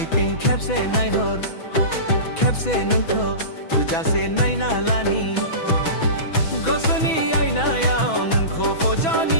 तिं खेबसे नायहर खेबसे नोंखौ तुजासे नायना लानि गोसोनि आयनायाव नोंखौ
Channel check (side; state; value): right; late; 6.2 ms